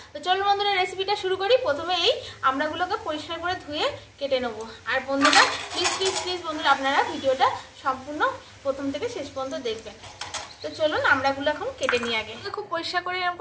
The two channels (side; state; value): both; identical; correlation 1.00